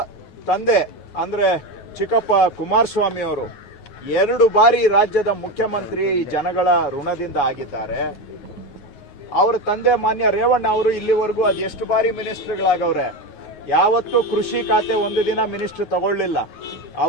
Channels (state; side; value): late; right; 9.4 ms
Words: ತಂದೆ ಅಂದ್ರೆ ಚಿಕ್ಕಪ್ಪ ಕುಮಾರಸ್ವಾಮಿ ಅವರು 2 ಬಾರಿ ರಾಜ್ಯದ ಮುಖ್ಯಮಂತ್ರಿ ಜನಗಳ ಋಣದಿಂದ ಆಗಿದ್ದಾರೆ. ಅವರ ತಂದೆ ಮಾನ್ಯ ರೇವಣ್ಣ ಅವರು ಇಲ್ಲಿವರೆಗೂ ಅದು ಎಷ್ಟು ಬಾರಿ ಮಿನಿಸ್ಟರ್ಗಳಾಗವ್ರೆ, ಯಾವತ್ತೂ ಕೃಷಿ ಖಾತೆ ಒಂದು ದಿನ ಮಿನಿಸ್ಟರ್ ತಗೊಳ್ಳಿಲ್ಲ.